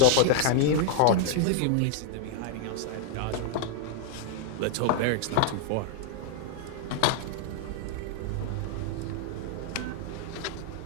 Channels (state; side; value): different; both; correlation 0.00